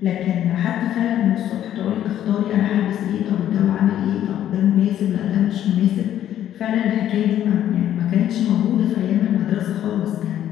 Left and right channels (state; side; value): quieter; right; 11.3 dB